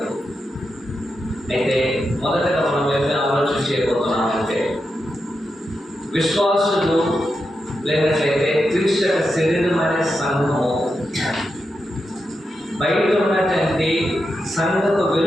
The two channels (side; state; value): both; normal; correlation 0.87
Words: అయితే మొదటగా మనం ఏమైనా ఆలోచన చేయబోతున్నామంటే, విశ్వాసులు లేనట్లయితే క్రీస్తు శరీరం అనే సంఘము బయట ఉన్నటువంటి సంఘపు